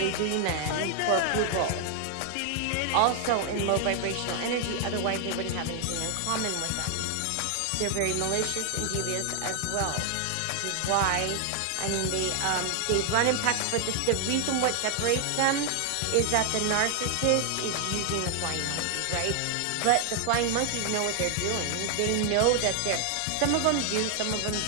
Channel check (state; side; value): different; both; correlation 0.00